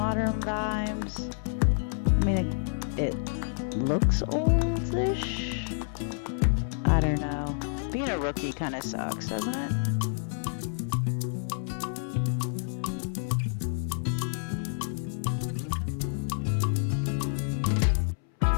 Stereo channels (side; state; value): right; silent; 59 dB below the other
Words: vibes. I mean, it looks oldish. I don't know. Being a rookie kind of sucks, doesn't it?